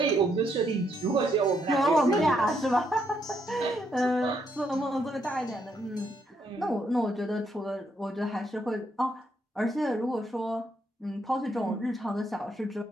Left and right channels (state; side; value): normal; both; correlation 0.75